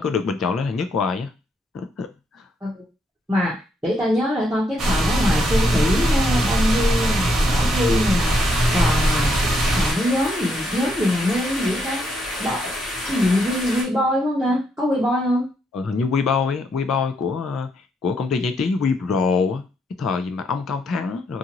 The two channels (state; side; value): normal; both; correlation 0.76